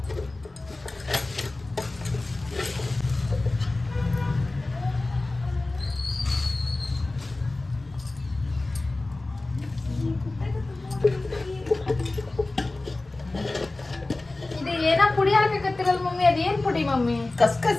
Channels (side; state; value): right; quieter; 3.0 dB